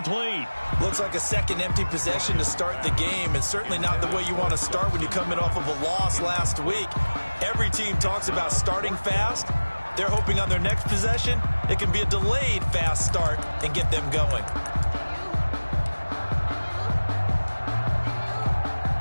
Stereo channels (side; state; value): both; inverted; correlation -1.00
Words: Looks like a 2nd empty possession to start the game, and certainly not the way you want to start when you're coming off of a loss last week. Every team talks about starting fast. They're hoping on their next possession, it can be a delayed fast start and get them going.